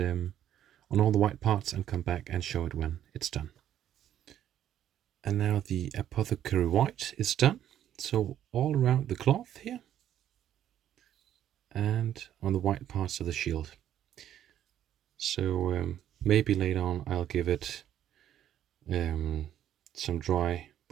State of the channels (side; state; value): left; quieter; 11.0 dB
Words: all the white parts and come back and show it when it's done. And now the Apothecary White is done. So all around the cloth here and on the white parts of the shield. So maybe later on I'll give it some dry